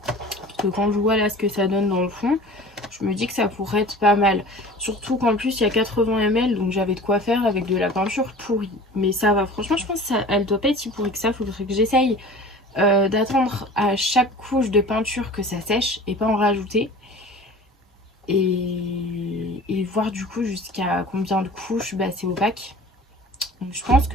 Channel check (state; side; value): normal; both; correlation 0.41